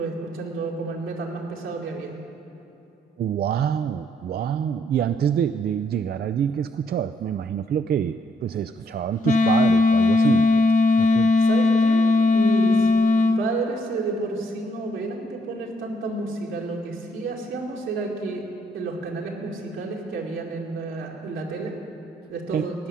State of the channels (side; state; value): both; normal; correlation 0.72